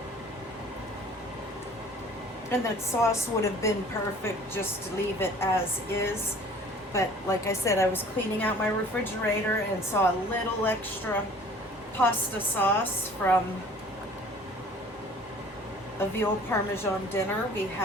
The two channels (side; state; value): both; normal; correlation 0.49